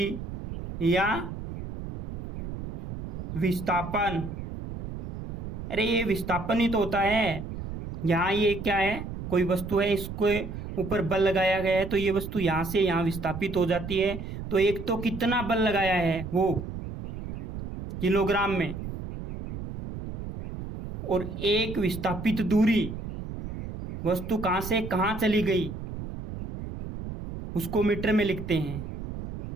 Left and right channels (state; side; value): noise; right; rumble, 8 dB below the sound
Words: या विस्थापन। अरे ये विस्थापन ही तो होता है। यहाँ ये क्या है? कोई वस्तु है, इसको ऊपर बल लगाया गया है, तो ये वस्तु यहां से यहां विस्थापित हो जाती है। तो एक तो कितना बल लगाया है वो किलोग्राम में, और एक विस्थापित दूरी, वस्तु कहां से कहां चली गई उसको मीटर में लिखते हैं।